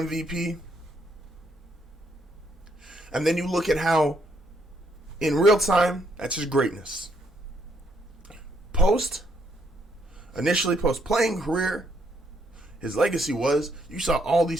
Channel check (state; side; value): normal; both; correlation 0.72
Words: And then you look at how, in real time, that's his greatness. Initially post-playing career, his legacy was, you saw all